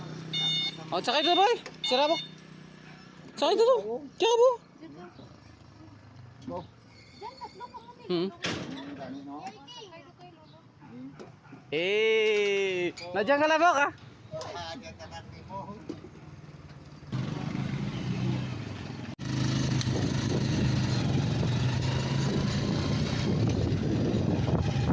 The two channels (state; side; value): identical; both; correlation 1.00